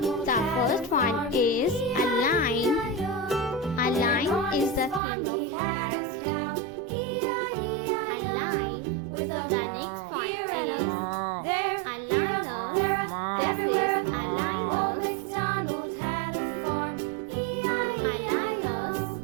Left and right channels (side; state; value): left; drops out; at 5.0 s